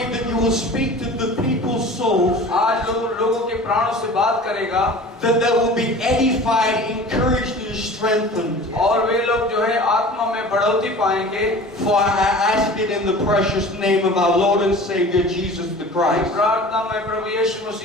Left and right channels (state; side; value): normal; both; correlation 0.40